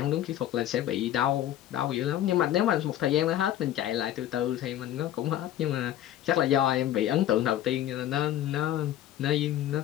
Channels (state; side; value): quieter; right; 12.3 dB